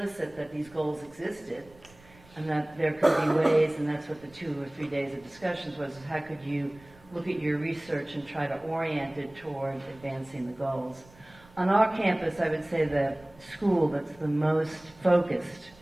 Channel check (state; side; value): noise; right; rumble, 25 dB below the sound